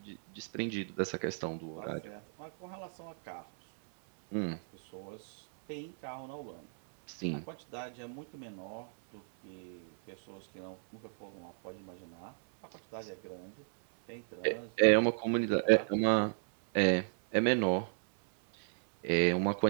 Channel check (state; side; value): silent; left; 55 dB below the other